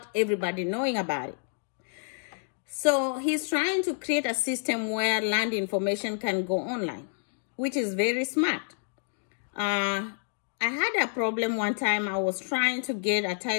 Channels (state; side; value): silent; right; digital silence